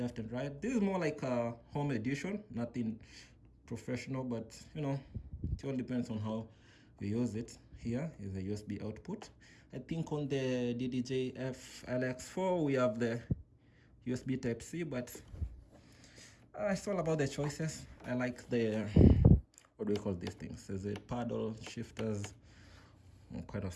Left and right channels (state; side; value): identical; both; correlation 1.00